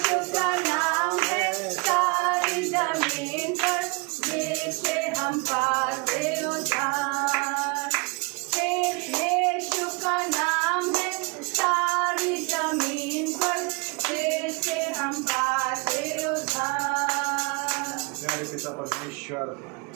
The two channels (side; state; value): left; quieter; 30.9 dB